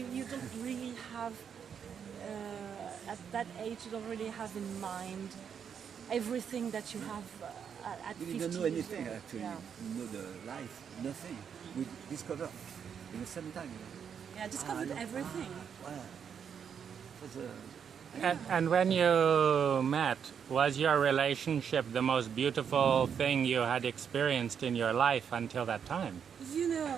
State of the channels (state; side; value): quieter; left; 7.5 dB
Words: don't really have at that age. You don't really have in mind everything that you have at 50 We don't know anything years old. actually. Yeah. We know the life, nothing. We discover in the same time. Yeah, I discovered everything. Wow. And when you met, was your relationship the most beautiful thing you had experienced in your life until that time? You